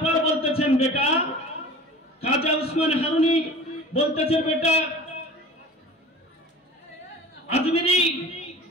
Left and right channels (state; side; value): normal; both; correlation 0.39